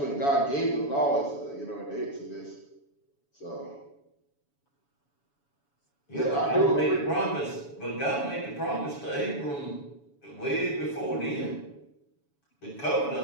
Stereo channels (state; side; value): late; right; 7.1 ms